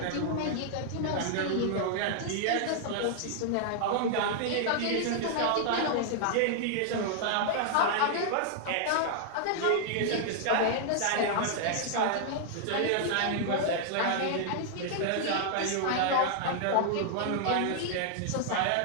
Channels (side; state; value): both; different; correlation -0.01